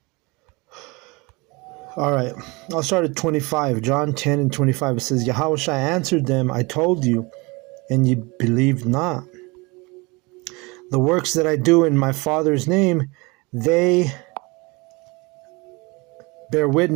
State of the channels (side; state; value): left; quieter; 26.1 dB